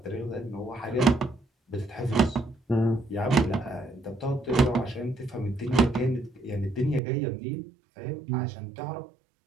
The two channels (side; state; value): left; drops out; at 7.0 s